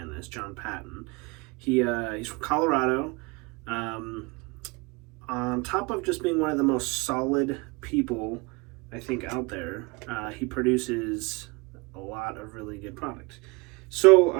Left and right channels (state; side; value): quieter; left; 26.8 dB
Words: this, John Patton, he's from Colorado. On top of just being one of the most solid people, I think, out there, he produces a lot of really good product. So